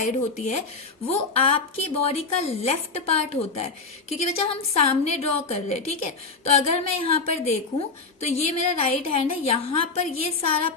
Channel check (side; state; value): right; quieter; 4.2 dB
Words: होती है, वो आपकी बॉडी का लेफ्ट पार्ट होता है, क्योंकि बच्चा हम सामने ड्रॉ कर रहे हैं, ठीक है. तो अगर मैं यहाँ पर देखूं तो ये मेरा राइट हैंड है, यहाँ पर ये सारा